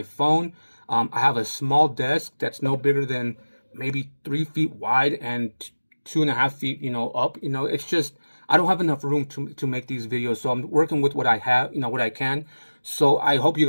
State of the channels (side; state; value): both; inverted; correlation -1.00